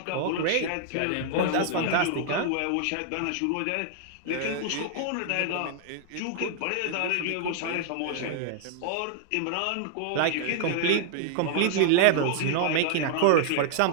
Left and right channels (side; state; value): both; different; correlation -0.01